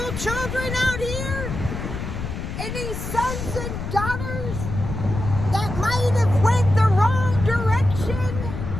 children out here? Any sons and daughters that might have went the wrong direction?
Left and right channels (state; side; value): noise; left; rumble, 6 dB below the sound